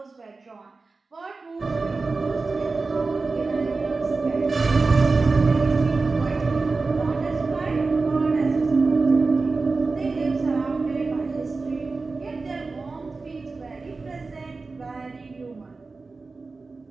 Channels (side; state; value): left; quieter; 3.9 dB